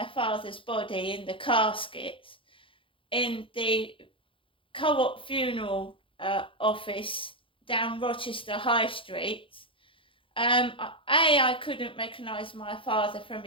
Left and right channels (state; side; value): late; right; 0.25 ms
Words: father's body in the casket, in the Co-op funeral office down Rochester High Street. I couldn't recognise my father from